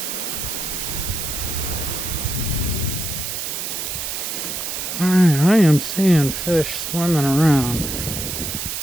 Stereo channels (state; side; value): noise; right; hiss, 4 dB below the sound